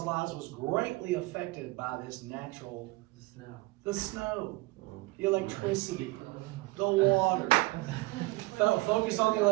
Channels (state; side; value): quieter; left; 21.3 dB